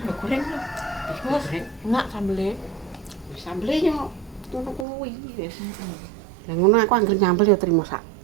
goreng lho digoreng Enak sambelnya. sambel yo ngono kuwi wis lah ngono aku anggere nyambel yo trimo sak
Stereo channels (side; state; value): left; drops out; at 4.9 s